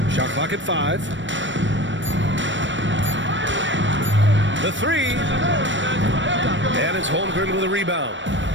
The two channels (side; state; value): left; late; 0.54 ms